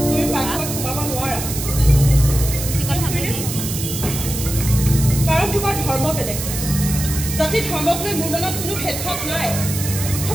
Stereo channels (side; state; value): right; noise; hiss, 6 dB below the sound